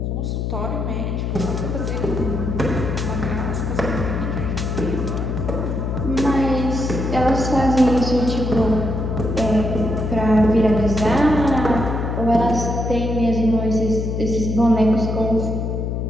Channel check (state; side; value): noise; left; hum, 2 dB below the sound